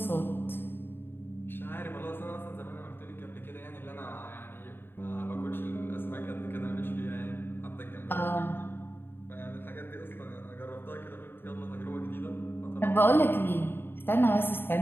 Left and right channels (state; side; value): late; right; 0.10 ms